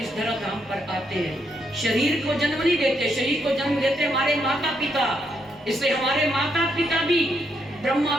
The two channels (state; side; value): normal; both; correlation 0.77